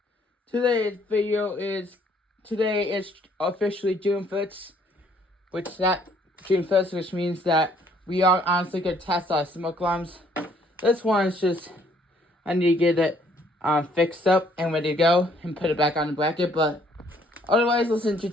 Today is officially June 1st, which means that we are honestly gonna test our smoke alarms. This one is just, I need to get it fixed up and ready to go and put it back on the bracket, but otherwise, let's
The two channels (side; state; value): both; normal; correlation 0.64